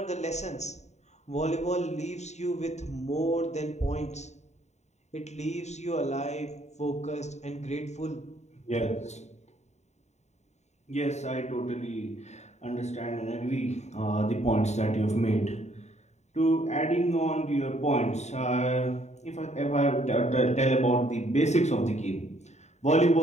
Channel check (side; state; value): right; late; 0.33 ms